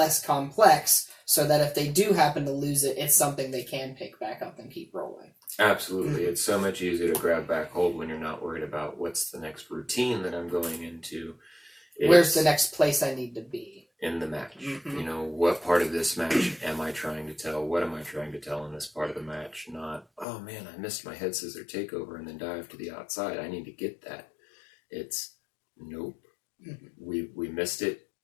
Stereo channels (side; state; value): right; drops out; at 20.2 s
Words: complex, so that if they do happen to lose it, it's something they can pick back up and keep rolling. Absolutely. It's so much easier to grab back hold when you're not worried about what's the next routine that I'm going into. Where's the next place I need to be in the match? What part of this match am I trying to tell? What am I trying to tell in this part of the match? Not, oh man, I missed my head scissor takeover and then dive to the outside. I need to get that. It's, nope. We missed it.